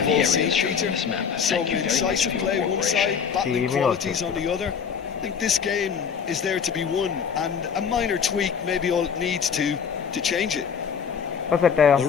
the all seen, areas shown Peter. on this map. Some Thank you very much incisive for your play one cooperation. side, battling qualities on the other. I think this game is there to be won, and a minor tweak maybe all it needs to change it. ഇപ്പൊ സെറ്റായോ?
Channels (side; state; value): right; quieter; 6.9 dB